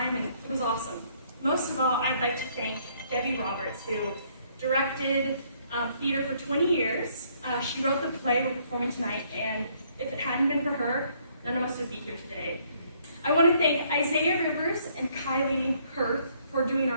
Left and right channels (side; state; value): both; inverted; correlation -0.66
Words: and it was awesome. Most of all, I'd like to thank Debbie Roberts, who directed theater for 20 years. She wrote the play we're performing tonight, and if it hadn't been for her, none of us would be here today. I want to thank Isaiah Rivers and Kylie Hirth for doing